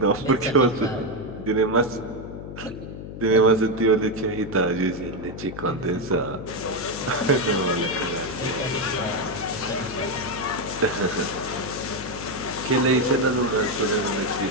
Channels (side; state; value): left; noise; hum, 10 dB below the sound